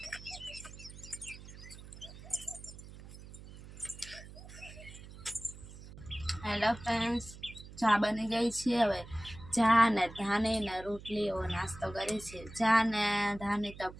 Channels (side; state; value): right; noise; hum, 16 dB below the sound